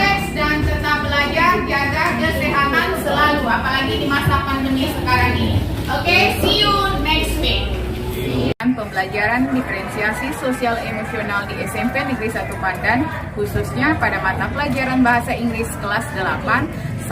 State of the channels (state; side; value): identical; both; correlation 1.00